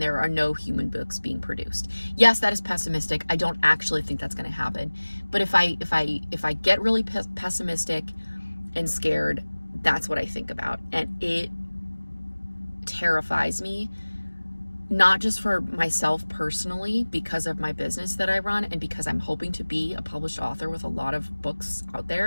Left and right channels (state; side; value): inverted; both; correlation -1.00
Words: are no human books being produced. Yes, that is pessimistic. I don't actually think that's going to happen. But if I get really pessimistic and scared, that's what I think about. And it terrifies me, not just for myself personally, because of my business that I run and because I'm hoping to be a published author with a lot of books out